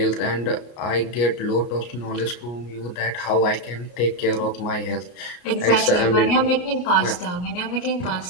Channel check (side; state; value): right; late; 33 ms